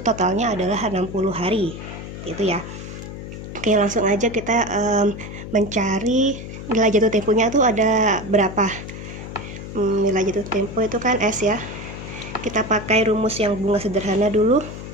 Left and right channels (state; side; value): noise; left; hum, 10 dB below the sound